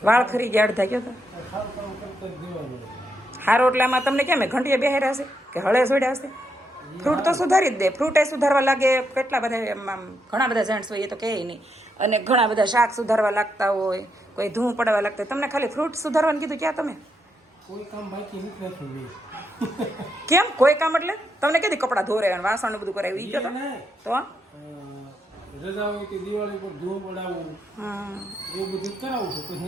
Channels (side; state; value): both; normal; correlation 0.80